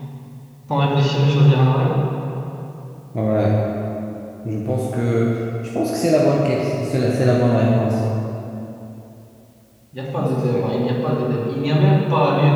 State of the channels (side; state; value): both; identical; correlation 1.00